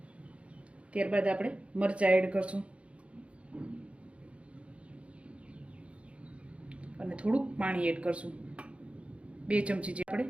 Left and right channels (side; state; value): left; late; 0.061 ms